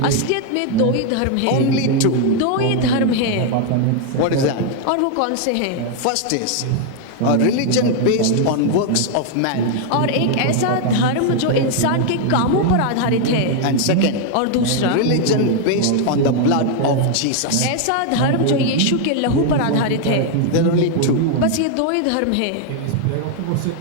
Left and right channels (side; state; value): both; different; correlation 0.00